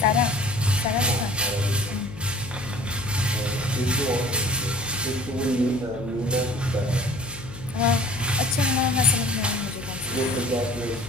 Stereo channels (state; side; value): noise; left; hum, 15 dB below the sound